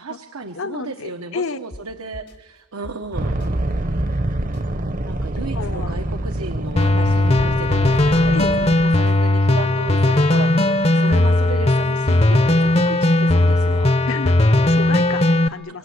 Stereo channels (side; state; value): both; normal; correlation 0.76